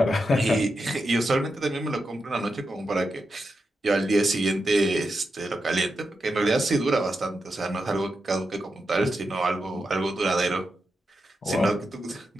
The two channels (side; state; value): both; normal; correlation 0.87